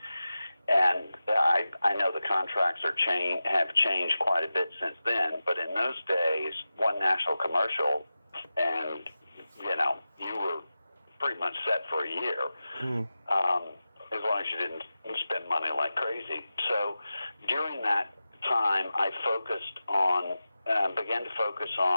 And I know the contracts have changed quite a bit since then, but in those days, one national commercial, and you were pretty much set for a year, as long as you didn't spend money like crazy. So during that time, I began to focus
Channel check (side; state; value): both; inverted; correlation -0.94